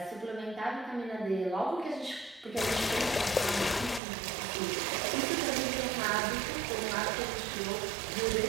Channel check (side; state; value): left; drops out; at 4.0 s